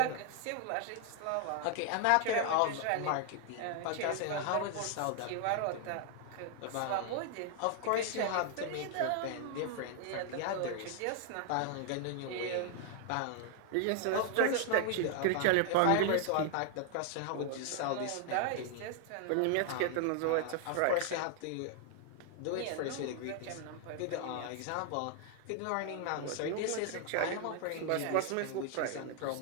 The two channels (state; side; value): different; both; correlation 0.00